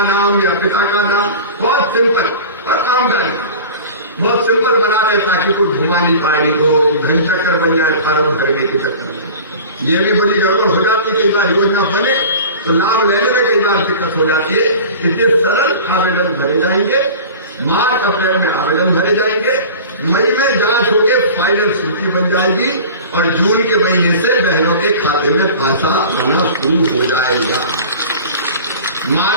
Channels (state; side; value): inverted; both; correlation -0.38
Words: नाम या पिता का नाम, बहुत सिंपल। और आमदनी बहुत सिंपल बना रहे ताकि कोई घुमा नहीं पाएगी, तो घन चक्कर बन जाए फॉर्म भरने के चक्कर में। ये भी बड़ी गड़बड़ हो जाती है, कई बार योजना बने तो लाभ लेने में कई बार दिक्कत हो जाती है। इसलिए सरल आवेदन भरे जाएंगे, मार्च अप्रैल में आवेदन भरे जाएंगे, मई में जांच होकर फाइनल सूची बन जाएगी और जून के महीने से बहनों के खाते में पैसा आना शुरू हो जाएगा।